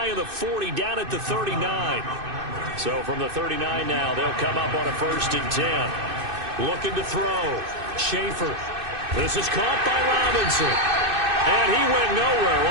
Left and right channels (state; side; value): late; left; 2.6 ms